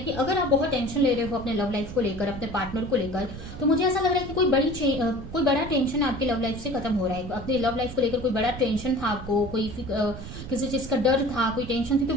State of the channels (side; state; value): right; noise; rumble, 11 dB below the sound